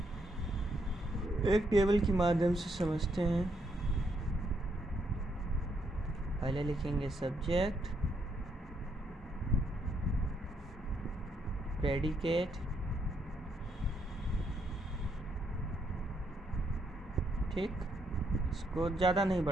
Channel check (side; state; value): both; normal; correlation 0.75